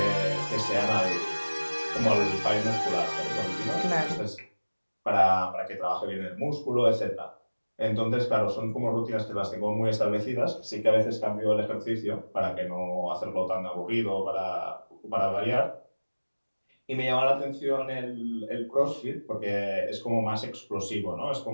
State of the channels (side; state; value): both; inverted; correlation -1.00